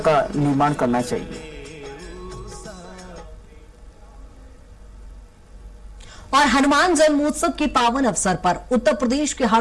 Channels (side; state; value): both; identical; correlation 1.00